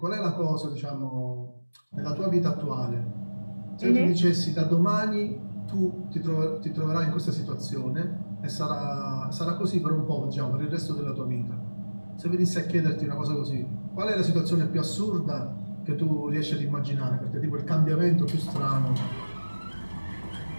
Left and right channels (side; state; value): both; inverted; correlation -1.00